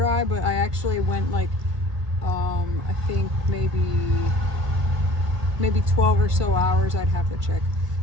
but I actually went like I think maybe 12 or so hours, I'd have to check,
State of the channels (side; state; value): left; late; 1.6 ms